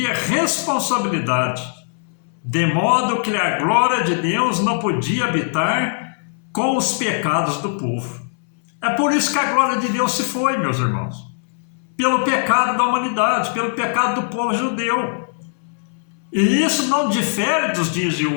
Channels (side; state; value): right; silent; 64 dB below the other